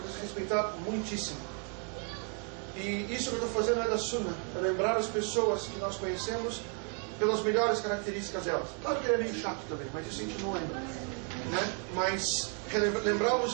respeitar muitíssimo. E isso que eu estou fazendo é da Sunnah, é lembrar as pessoas que nós conhecemos pelas melhores características delas. Claro que ele é meio chato também, mas isso a gente não lembra, né? Mas lembrar os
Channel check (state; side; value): quieter; left; 38.7 dB